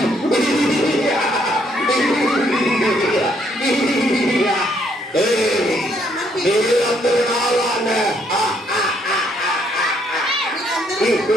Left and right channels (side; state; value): both; normal; correlation 0.70